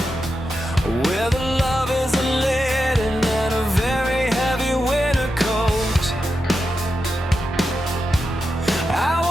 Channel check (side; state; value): both; normal; correlation 0.88